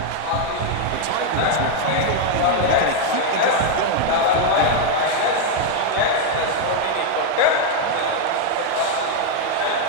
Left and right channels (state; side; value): different; both; correlation 0.00